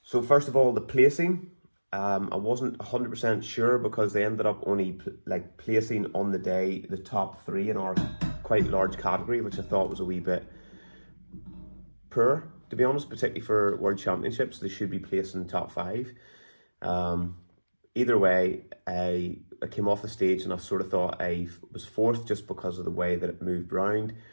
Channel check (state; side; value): inverted; both; correlation -1.00